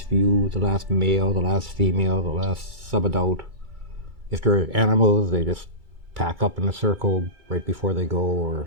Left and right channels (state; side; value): late; left; 2.3 ms